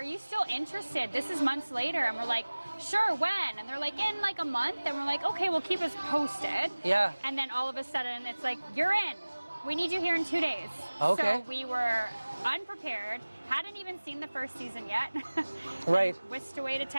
you still interested? This is months later. And we're like, sure, when? And they're like, in like a month. And we're like, okay, well, keep us posted. Yeah. And then all of a sudden, it's like, you're in. We need you here in 2 days. Okay. So we were unprepared, hadn't even seen the first season yet. Right. Whisked away to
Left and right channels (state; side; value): inverted; both; correlation -1.00